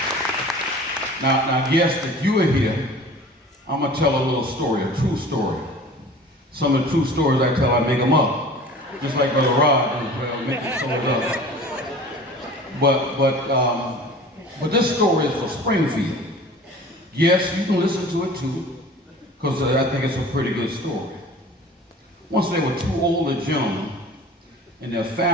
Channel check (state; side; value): normal; both; correlation 0.42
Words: Now, guests, if you are here, I'm going to tell a little story, a true story. Some of the true stories I tell, I make them up. Just like Brother Rod does, well, make it sold up. But this story is for Springfield. Yes, you can listen to it too, because I think it's a pretty good story. Once there were two older gentlemen, and their